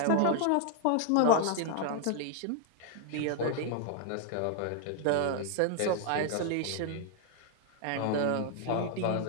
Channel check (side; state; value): both; different; correlation 0.00